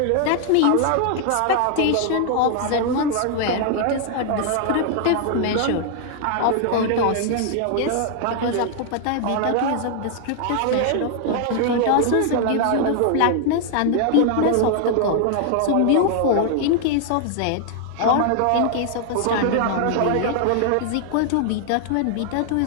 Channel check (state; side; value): different; both; correlation 0.00